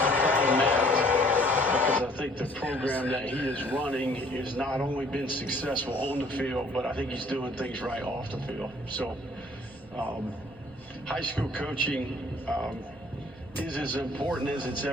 Because I think the program that he is running has not only been successful on the field, but I think he's doing things right off the field. So high school coaching is as important as it's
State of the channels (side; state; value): right; noise; rumble, 24 dB below the sound